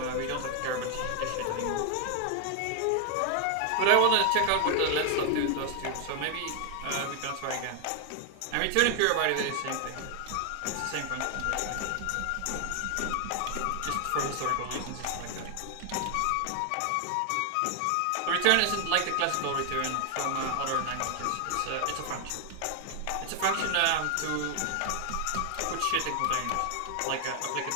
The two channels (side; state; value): both; different; correlation 0.00